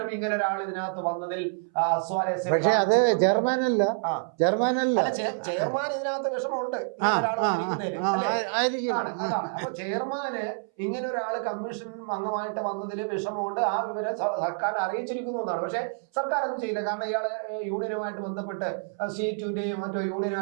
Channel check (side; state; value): left; silent; 60 dB below the other